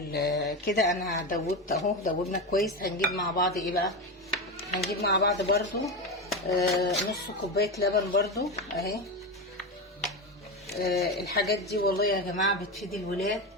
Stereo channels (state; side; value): normal; both; correlation 0.17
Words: كده. انا دوبت اهو، دوبنا كويس. هنجيب مع بعض ايه بقى؟ هنجيب مع بعض برضو نص كوبايه لبن برضو اهي. الحاجات دي والله يا جماعه بتفيد الولاد،